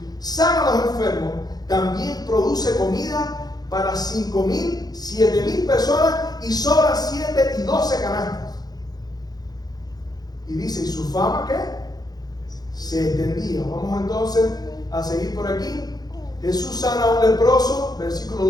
sana a los enfermos, también produce comida para 5,000, 7,000 personas y sobran 7 y 12 canastas. Y dice, ¿y su fama qué? Se extendía. Vamos entonces a seguir por aquí. Jesús sana a un leproso, versículo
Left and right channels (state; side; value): late; right; 0.19 ms